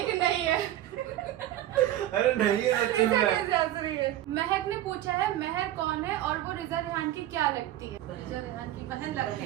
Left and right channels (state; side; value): quieter; left; 13.5 dB